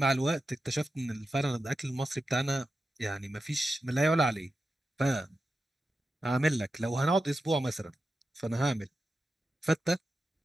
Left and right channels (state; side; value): normal; both; correlation 0.90